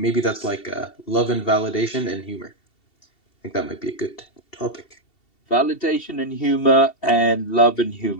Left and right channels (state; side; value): late; right; 2.7 ms